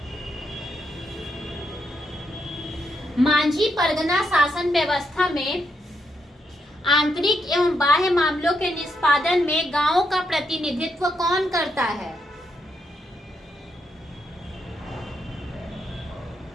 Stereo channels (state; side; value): normal; both; correlation 0.80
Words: मांझी परगना शासन व्यवस्था में आंतरिक एवं बाह्य मामलों के निष्पादन में गांवों का प्रतिनिधित्व कौन करता है?